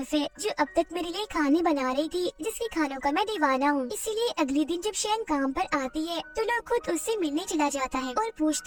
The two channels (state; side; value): identical; both; correlation 1.00